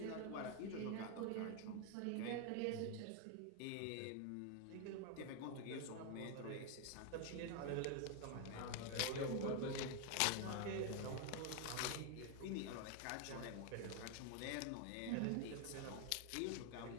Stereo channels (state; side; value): different; both; correlation 0.01